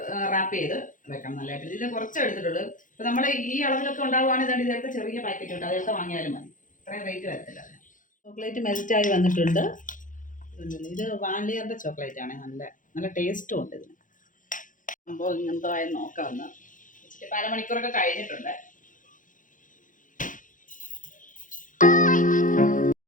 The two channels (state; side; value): late; right; 0.38 ms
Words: റാപ്പ് ചെയ്ത് വെക്കണം നല്ലതായിട്ട്. ഇതിൽ കുറച്ച് എടുത്തിട്ടുള്ളൂ. ഇപ്പം നമ്മൾ ഈ അളവിലൊക്കെ ഉണ്ടാവുകയാണെങ്കിൽ ഇതിലൊക്കെ ചെറിയ പാക്കറ്റ് ഉണ്ട്, അതൊക്കെ വാങ്ങിയാലും മതി. ഇത്രയും റേറ്റ് വരത്തില്ല. ചോക്ലേറ്റ് മെൽറ്റായി വന്നിട്ടുണ്ട്. ഇത് വാനിലയുടെ ചോക്ലേറ്റ് ആണ്. നല്ല ടേസ്റ്റും ഉണ്ട് ഇതിന്. അപ്പോൾ ഇങ്ങനത്തെ ആയി നോക്കാമെന്ന് വെച്ചിട്ട് 1/2 മണിക്കൂറൊക്കെ കഴിഞ്ഞിട്ടുണ്ട്.